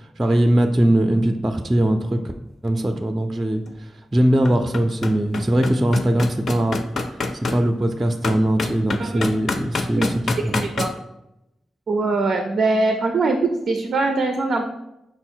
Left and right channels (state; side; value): normal; both; correlation 0.92